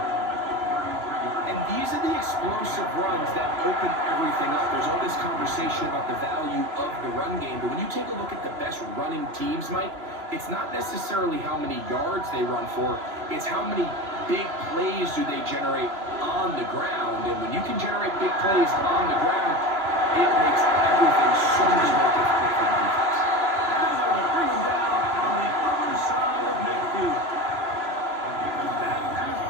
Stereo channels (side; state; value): left; late; 3.0 ms